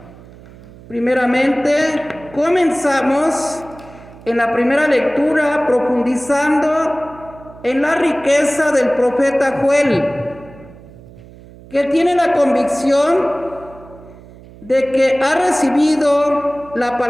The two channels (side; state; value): right; noise; hum, 21 dB below the sound